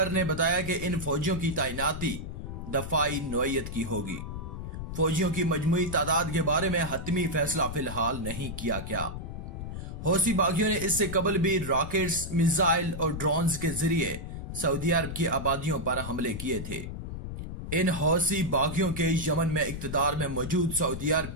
ने बताया कि इन फौजियों की तैनाती दफाई नौयत की होगी। फौजियों की मजमूई तादाद के बारे में हतमी फैसला फिलहाल नहीं किया गया। हौसी बागियों ने इससे कबल भी रॉकेट्स, मिसाइल और ड्रोन्स के जरिए सऊदी अरब की आबादियों पर हमले किए थे। इन हौसी बागियों के यमन में इक्तदार में मौजूद सऊदी अरब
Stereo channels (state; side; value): noise; left; rumble, 7 dB below the sound